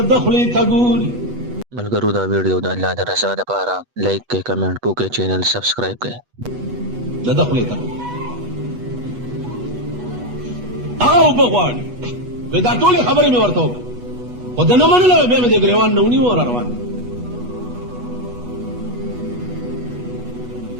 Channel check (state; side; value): late; left; 8.2 ms